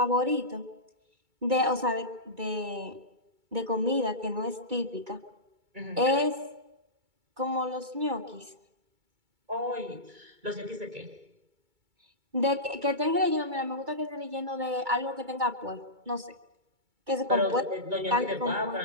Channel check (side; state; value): left; late; 2.2 ms